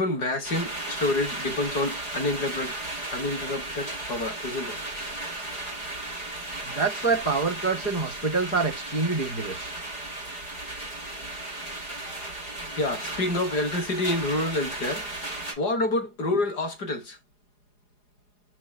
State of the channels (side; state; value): right; late; 4.8 ms